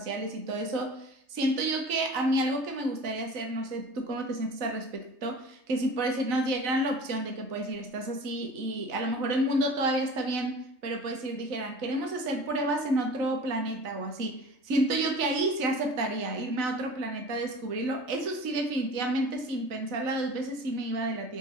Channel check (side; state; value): left; late; 3.3 ms